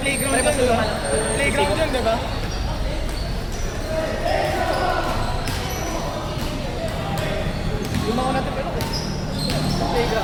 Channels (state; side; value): identical; both; correlation 1.00